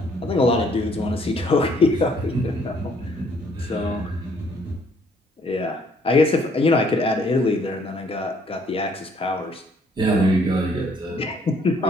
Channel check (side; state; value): both; normal; correlation 0.64